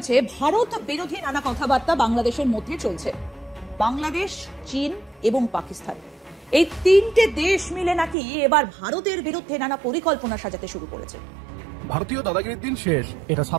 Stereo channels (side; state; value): left; drops out; at 8.2 s